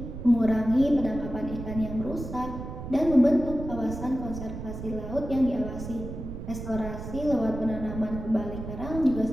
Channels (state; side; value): noise; right; rumble, 8 dB below the sound